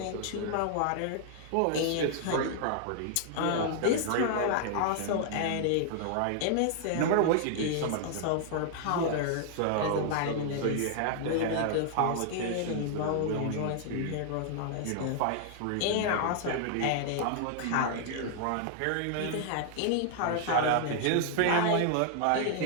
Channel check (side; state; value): both; different; correlation -0.01